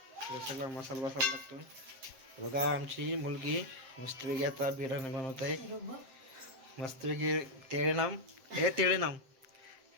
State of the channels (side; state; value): left; late; 7.6 ms